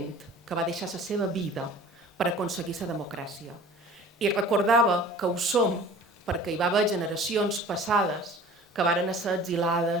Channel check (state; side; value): normal; both; correlation 0.45